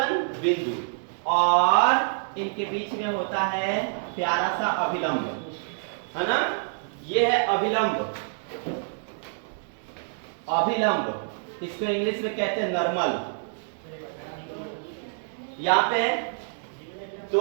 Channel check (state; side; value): silent; left; digital silence